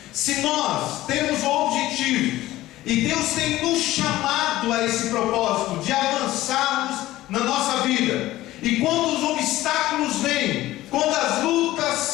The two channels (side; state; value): right; quieter; 16.1 dB